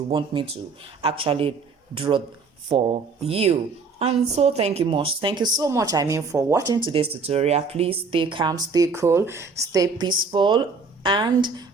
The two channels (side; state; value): left; quieter; 4.6 dB